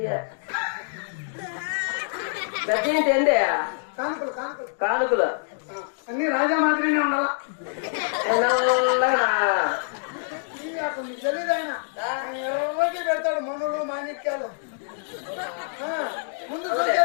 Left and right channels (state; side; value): silent; right; digital silence